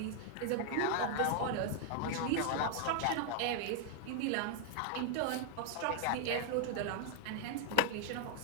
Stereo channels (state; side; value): different; both; correlation 0.00